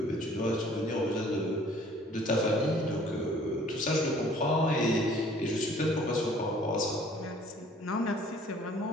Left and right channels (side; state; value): both; normal; correlation 0.55